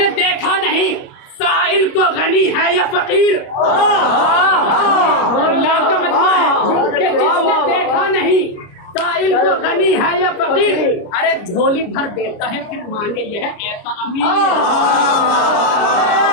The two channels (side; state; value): right; late; 29 ms